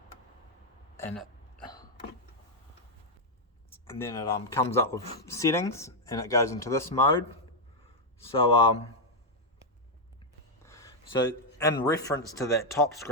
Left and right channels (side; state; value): both; normal; correlation 0.00